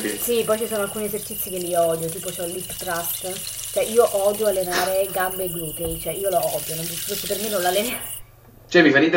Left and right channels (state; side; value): identical; both; correlation 1.00